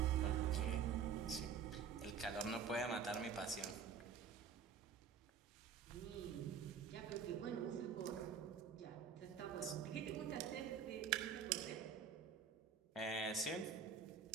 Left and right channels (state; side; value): quieter; left; 6.6 dB